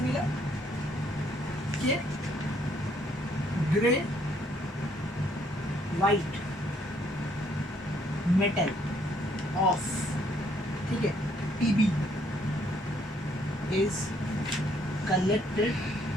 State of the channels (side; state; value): both; normal; correlation 0.67